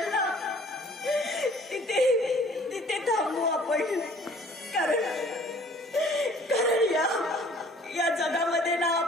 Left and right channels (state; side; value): normal; both; correlation 0.54